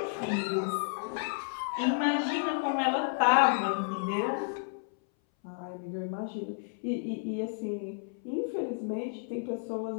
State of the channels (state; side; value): silent; right; 57 dB below the other